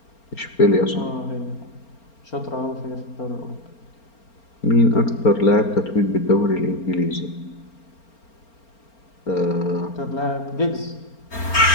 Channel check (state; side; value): late; right; 4.4 ms